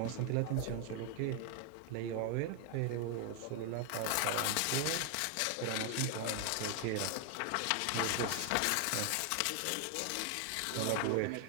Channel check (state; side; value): different; both; correlation 0.01